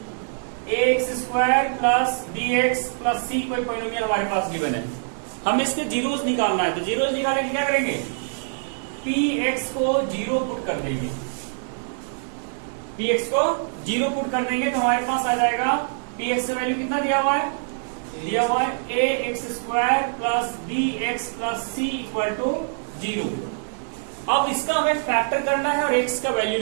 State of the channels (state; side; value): silent; left; digital silence